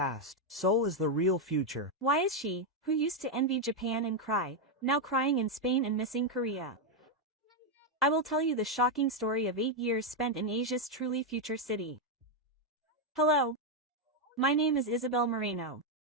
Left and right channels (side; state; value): both; normal; correlation 0.02